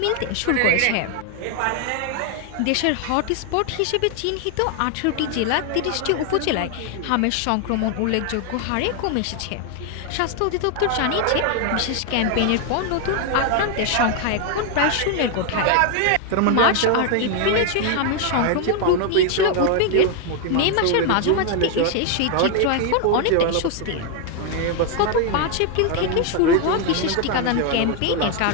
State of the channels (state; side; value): different; both; correlation 0.01